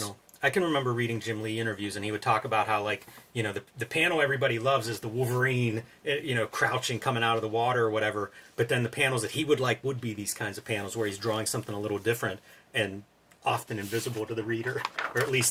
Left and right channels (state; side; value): identical; both; correlation 1.00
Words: I can remember reading Jim Lee interviews, and he would talk about how, the panel everybody loves is the Wolverine, crouching, coming out of the water or whatever. But then the panels that he would like would be these kinds of panels where he's drawing something a little different and often invisible to the reader, or at